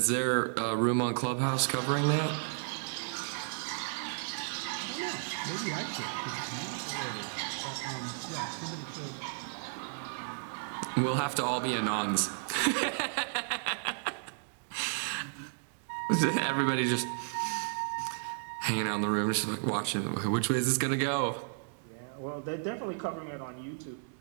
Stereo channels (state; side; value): silent; left; digital silence